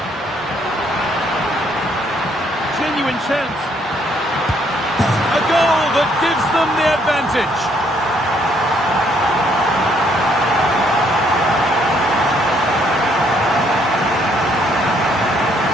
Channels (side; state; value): both; normal; correlation 0.68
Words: Genuine chance. A goal that gives them the advantage.